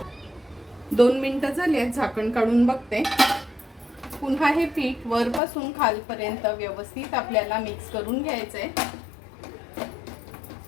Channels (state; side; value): drops out; right; at 5.4 s